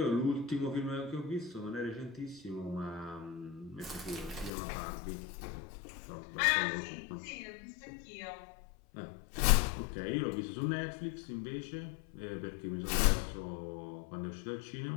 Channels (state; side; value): drops out; right; at 4.5 s